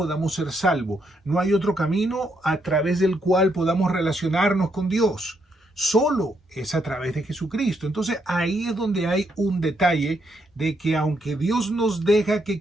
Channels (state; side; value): normal; both; correlation 0.76